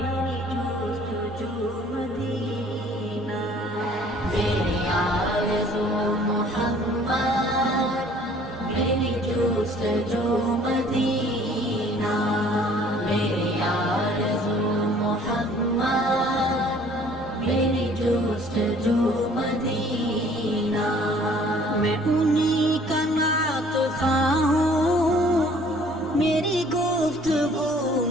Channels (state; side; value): normal; both; correlation 0.55